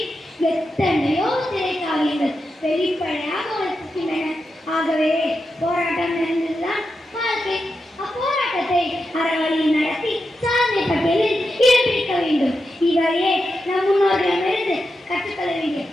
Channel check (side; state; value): both; normal; correlation 0.88